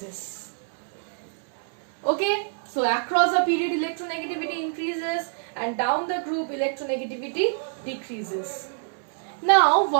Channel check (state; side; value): silent; left; digital silence